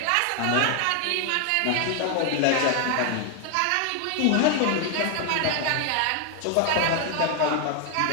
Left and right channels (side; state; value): both; different; correlation 0.00